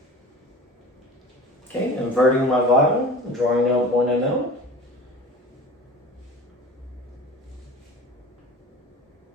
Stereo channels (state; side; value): normal; both; correlation 0.38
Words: Okay, inverting my vial, drawing out 1 ml.